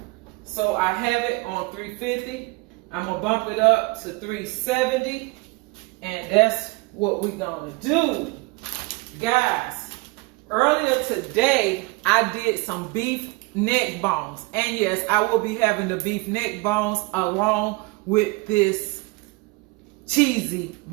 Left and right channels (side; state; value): left; quieter; 25.2 dB